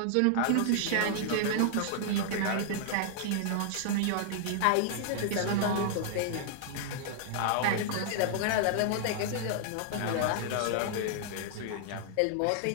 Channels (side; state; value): both; different; correlation -0.01